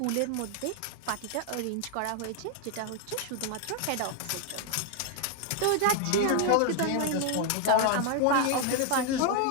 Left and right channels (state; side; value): different; both; correlation 0.00